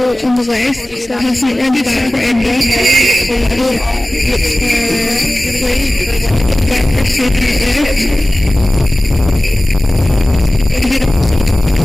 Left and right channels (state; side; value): normal; both; correlation 0.97